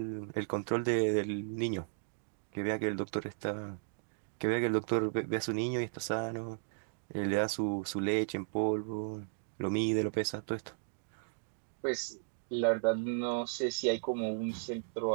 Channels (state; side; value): silent; left; digital silence